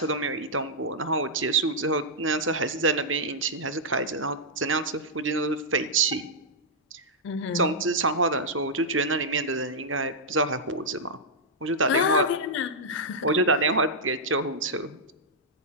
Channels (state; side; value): normal; both; correlation -0.09